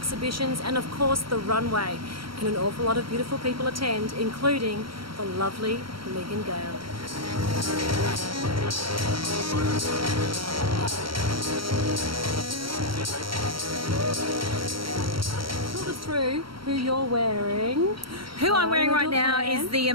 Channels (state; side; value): late; left; 0.74 ms